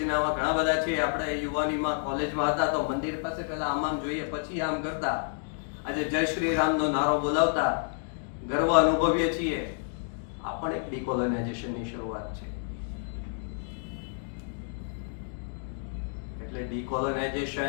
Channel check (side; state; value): right; silent; digital silence